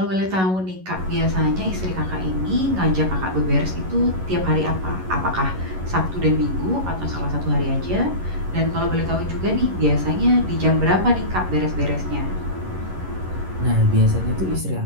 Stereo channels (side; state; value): left; late; 11 ms